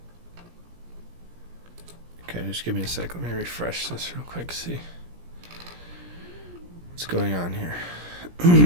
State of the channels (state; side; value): late; left; 17 ms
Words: Okay, just give me a sec. Let me refresh this real quick, see what's going on here.